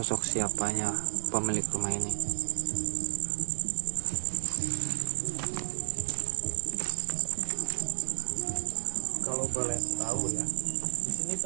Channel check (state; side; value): silent; left; digital silence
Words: siapanya pemilik rumah ini. Kalau boleh tahu ya, di sini